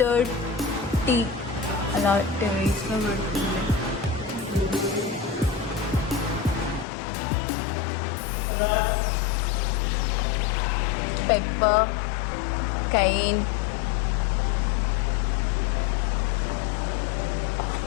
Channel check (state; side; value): drops out; right; at 6.9 s